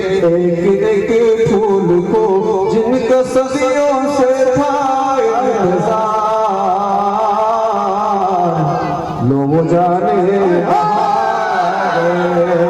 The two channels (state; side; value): identical; both; correlation 1.00